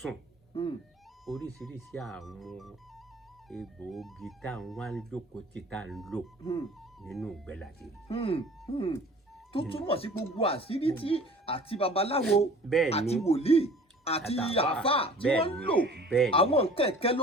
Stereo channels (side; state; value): both; normal; correlation 0.47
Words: oríṣiríṣi àwọn egbòogi tá à ń wá lóko tí tá à ń lò nínú ìgbẹ́ láti rí. Tó túmọ̀ sí gbogbo àṣírí tí àti babaláwo àti wòlíì àti àfà tí wọ́n ń lò àwọn nǹkan ẹ̀kẹ́